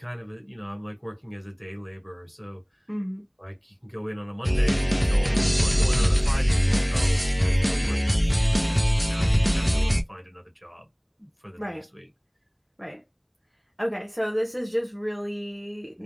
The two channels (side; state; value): both; identical; correlation 1.00